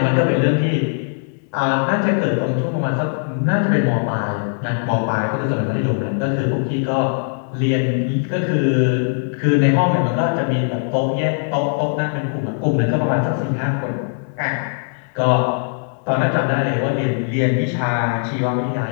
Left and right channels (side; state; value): right; silent; digital silence